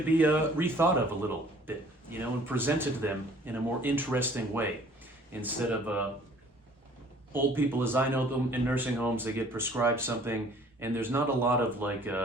be rethought of a little bit, and presented to them in a more interesting way. Instead of old people, as I know them in nursing homes, they get prescribed something and there's not a lot of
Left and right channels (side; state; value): both; normal; correlation 0.55